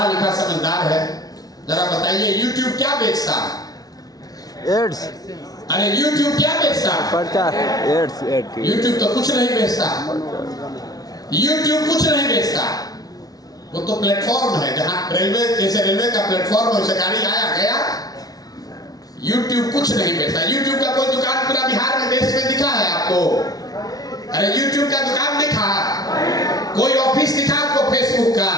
लिखा समझदार है। जरा बताइए यूट्यूब क्या बेचता है? एड्स। अरे यूट्यूब क्या बेचता है? प्रचार, एड्स। यूट्यूब तो कुछ नहीं बेचता। यूट्यूब कुछ नहीं बेचता। वो तो प्लेटफॉर्म है, जहां रेलवे, जैसे रेलवे का प्लेटफॉर्म है, गाड़ी आया गया। यूट्यूब कुछ नहीं बेचता। यूट्यूब का कोई दुकान पूरा बिहार में, देश में दिखा है आपको? अरे यूट्यूब का दुकान दिखा? कोई ऑफिस दिखा आपको फेसबुक का?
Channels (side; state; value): right; late; 0.18 ms